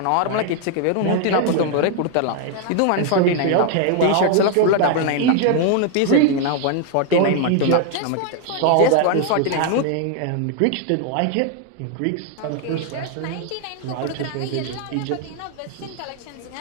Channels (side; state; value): both; different; correlation 0.00